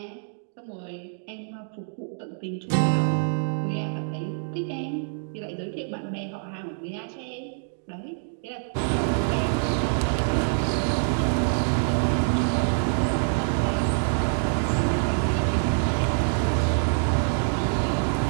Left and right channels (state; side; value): silent; left; digital silence